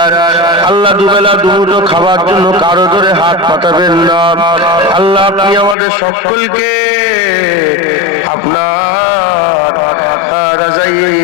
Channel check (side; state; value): right; drops out; at 5.8 s